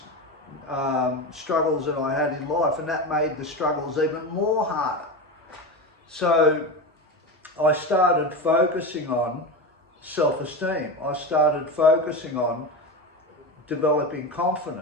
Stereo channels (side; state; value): both; normal; correlation 0.21